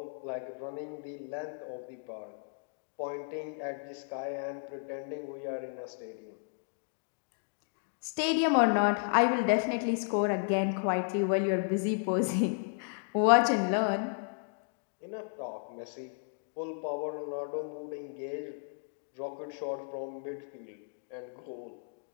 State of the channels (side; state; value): right; silent; digital silence